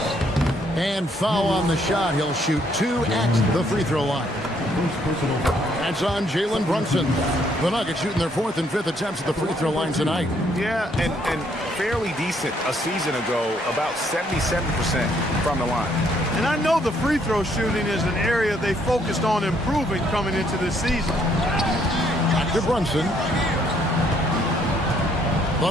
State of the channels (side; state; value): both; normal; correlation 0.68